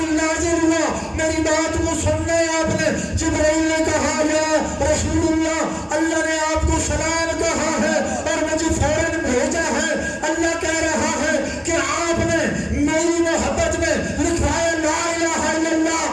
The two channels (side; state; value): both; identical; correlation 1.00